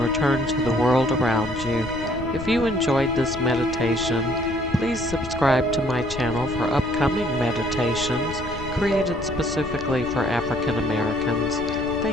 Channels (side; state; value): left; noise; rumble, 11 dB below the sound